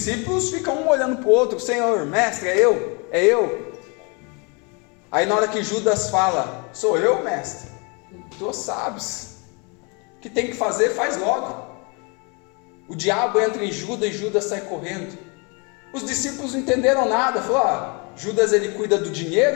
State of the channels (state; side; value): quieter; right; 32.3 dB